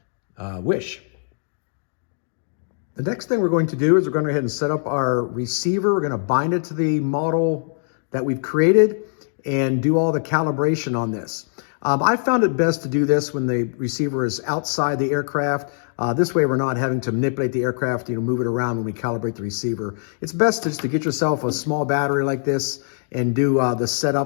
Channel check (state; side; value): silent; right; digital silence